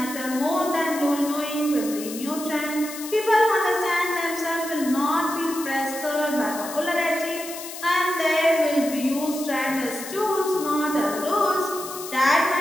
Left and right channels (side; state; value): left; noise; hiss, 11 dB below the sound